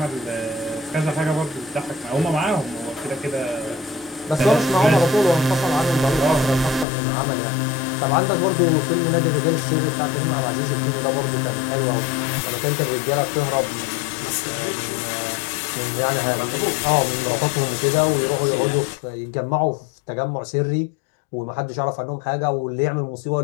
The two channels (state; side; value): drops out; right; at 6.9 s